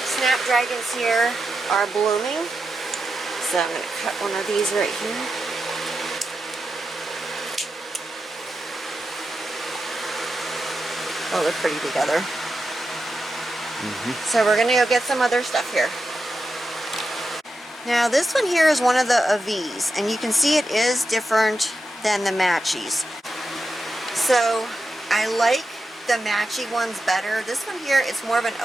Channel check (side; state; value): both; normal; correlation 0.89